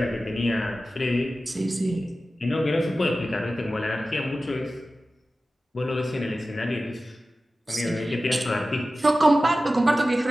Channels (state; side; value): normal; both; correlation 0.95